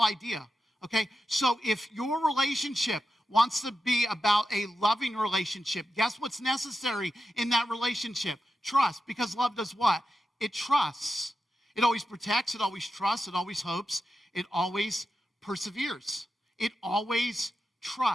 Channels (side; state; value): both; normal; correlation 0.89